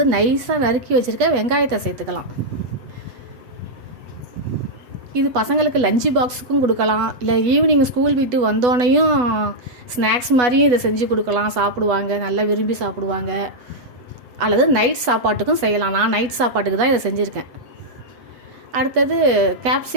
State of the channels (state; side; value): late; left; 8.1 ms